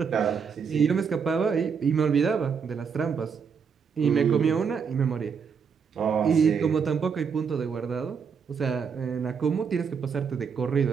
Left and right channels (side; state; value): left; quieter; 6.3 dB